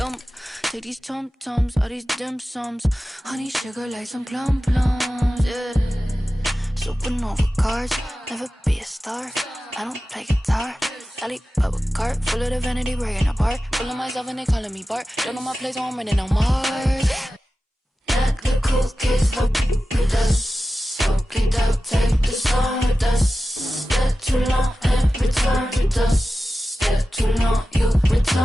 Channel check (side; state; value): both; normal; correlation 0.94